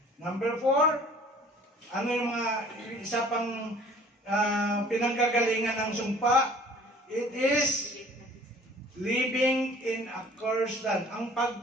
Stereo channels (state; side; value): normal; both; correlation 0.51